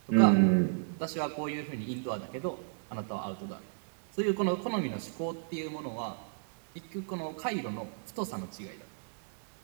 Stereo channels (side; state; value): left; silent; digital silence